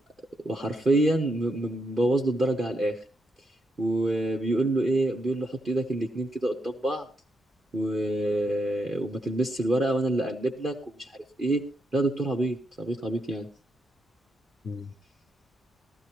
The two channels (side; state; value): both; normal; correlation 0.80